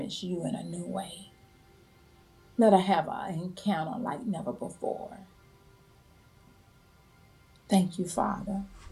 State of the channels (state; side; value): identical; both; correlation 1.00